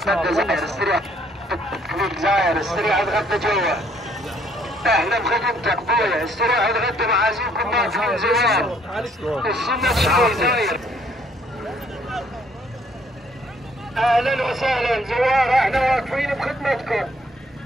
زاير، استريح زاير، استريح تغدى جوا. اهلا بخدمتك بويا، استريح تغدى معازيمكم ما فيهم زوار. السنة شوي زاير. اهلا وسهلا زوار، احنا واقفين بخدمتكم.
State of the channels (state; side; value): normal; both; correlation 0.65